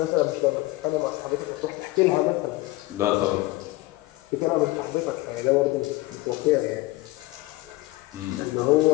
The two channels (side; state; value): right; quieter; 19.8 dB